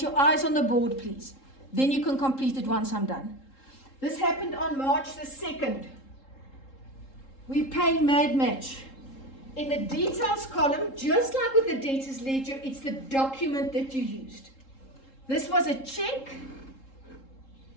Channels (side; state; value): right; late; 3.7 ms